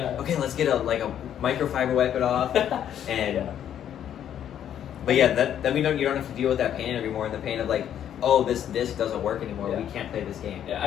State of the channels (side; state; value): right; quieter; 10.0 dB